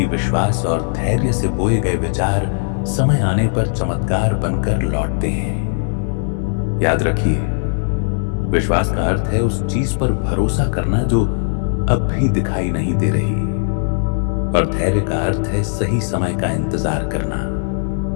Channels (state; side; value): silent; right; digital silence